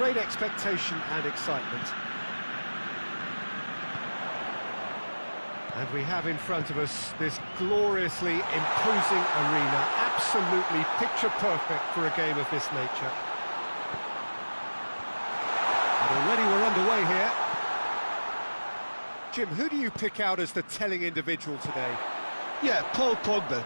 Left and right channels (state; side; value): inverted; both; correlation -1.00